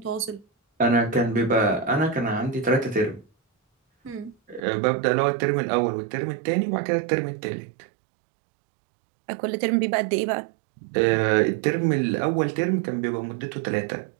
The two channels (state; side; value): drops out; left; at 4.7 s